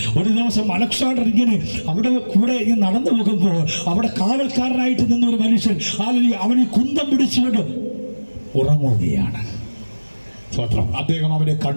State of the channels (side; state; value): both; inverted; correlation -1.00